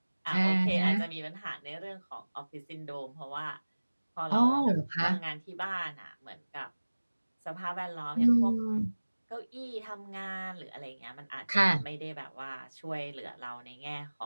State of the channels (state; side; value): inverted; both; correlation -1.00